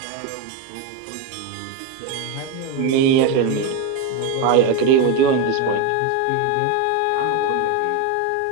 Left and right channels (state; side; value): different; both; correlation 0.03